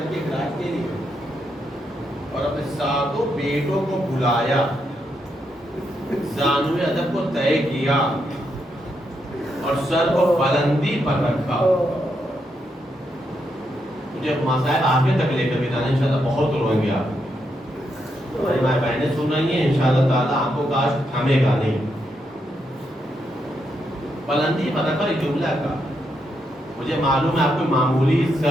کے گراج دے لیا، اور اپنے 7 بیٹوں کو بلایا، زانوِ ادب کو طے کیا اور سر کو بلندی پر رکھا۔ مجھے مسائل آگے تک لے کر بھی جانا، انشاءاللہ بہت روئیں گے آپ، ہماری ماں بہنیں سن رہی ہیں، انشاءاللہ تعالیٰ آپ کو کاش تھامے گا نہیں۔ بلندی پر رکھا ایک جملہ کا، مجھے معلوم ہے آپ کوئی معمولی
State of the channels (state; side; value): normal; both; correlation 0.81